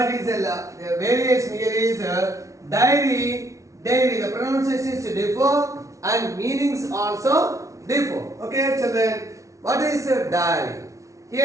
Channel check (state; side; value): late; left; 0.15 ms